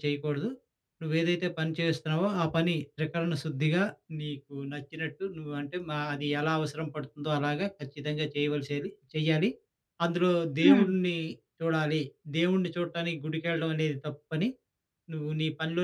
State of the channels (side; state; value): both; identical; correlation 1.00